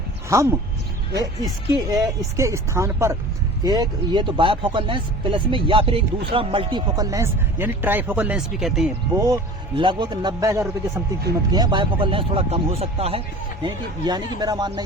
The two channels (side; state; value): both; normal; correlation 0.40